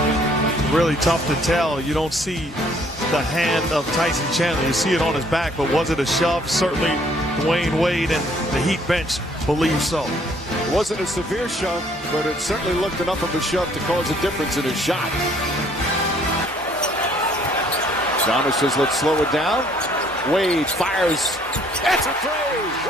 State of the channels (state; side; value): normal; both; correlation 0.62